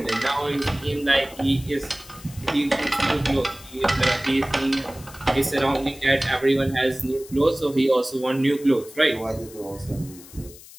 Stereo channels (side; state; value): left; noise; hiss, 19 dB below the sound